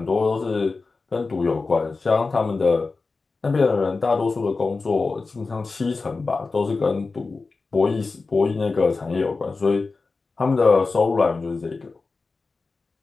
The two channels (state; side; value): quieter; right; 4.0 dB